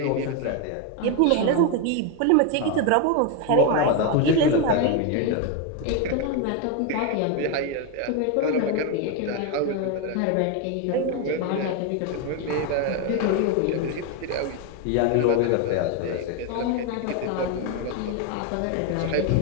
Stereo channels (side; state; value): both; different; correlation 0.02